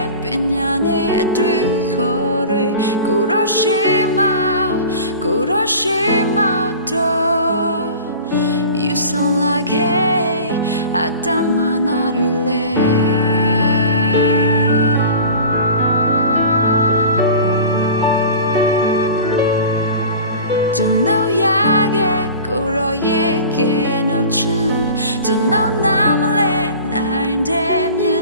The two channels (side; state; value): both; inverted; correlation -0.39